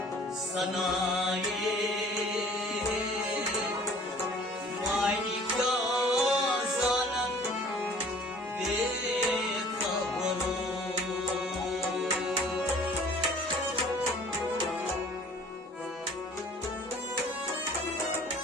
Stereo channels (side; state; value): both; normal; correlation 0.51